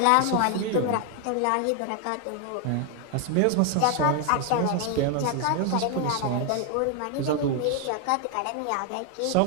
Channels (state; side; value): different; both; correlation 0.01